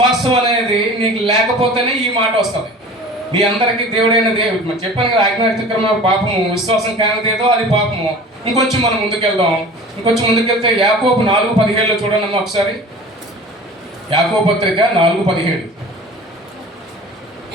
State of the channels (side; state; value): both; normal; correlation 0.41